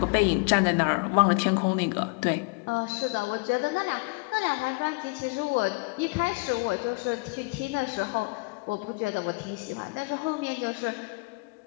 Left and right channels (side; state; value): right; quieter; 29.1 dB